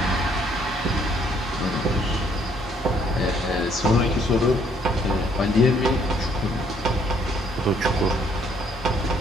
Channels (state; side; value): normal; both; correlation 0.66